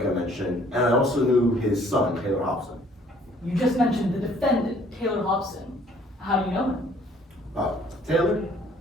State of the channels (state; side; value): normal; both; correlation 0.59